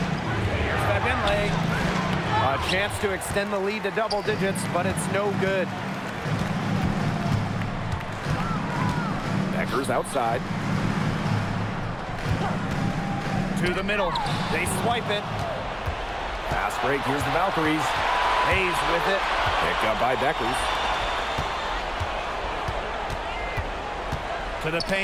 Here's Fagbenle. A chance to extend the lead to double digits, but it's no good. Beckers outside. To the middle. They swipe it. Fast break. Here's the Valkyries. Hayes with it. Picked up by Beckers. To the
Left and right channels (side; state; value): both; identical; correlation 1.00